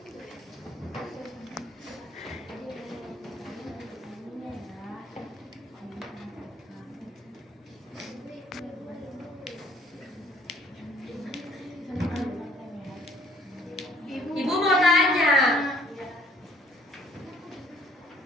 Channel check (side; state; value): both; normal; correlation 0.61